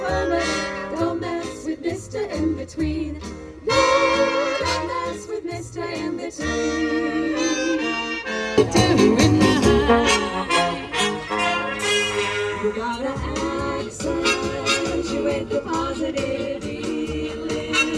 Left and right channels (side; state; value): both; identical; correlation 1.00